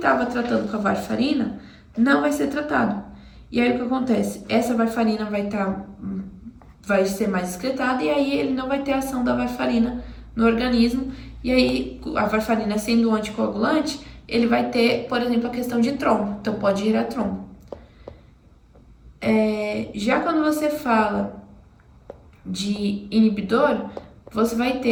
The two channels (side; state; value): both; identical; correlation 1.00